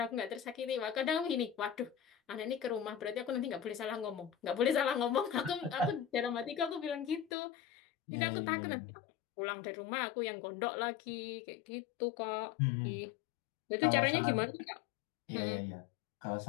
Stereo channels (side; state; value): right; drops out; at 7.3 s